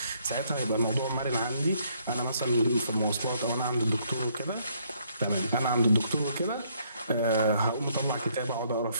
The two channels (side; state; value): both; inverted; correlation -0.68